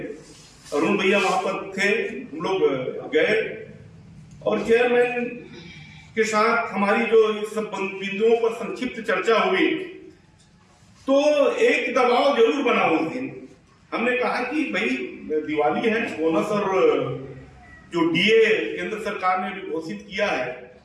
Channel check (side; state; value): both; identical; correlation 1.00